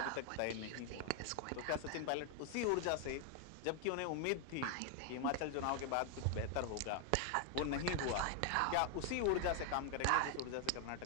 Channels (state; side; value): different; both; correlation 0.00